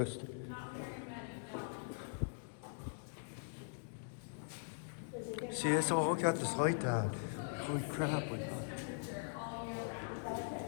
Not very many, no. See, that's all. Look at this light, Dad. Holy crap! Like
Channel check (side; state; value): right; silent; digital silence